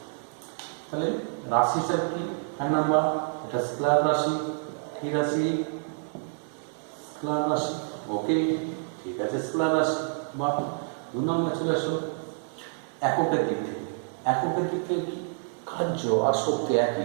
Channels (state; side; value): silent; left; digital silence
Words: তাহলে রাশি হিসাব কি? 1 নাম্বার এটা স্কেলার রাশি, কি রাশি? স্কেলার রাশি। ওকে, ঠিক আছে, স্কেলার রাশি। বা 2 নম্বর চলে আসো এককের দিক থেকে কি? কার্য আর শক্তি